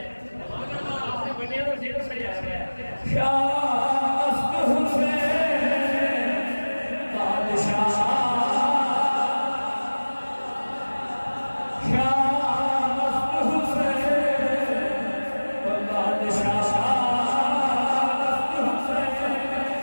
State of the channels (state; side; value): inverted; both; correlation -1.00